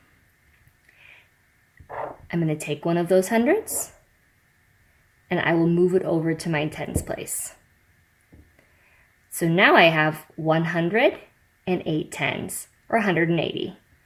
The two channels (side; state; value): both; identical; correlation 1.00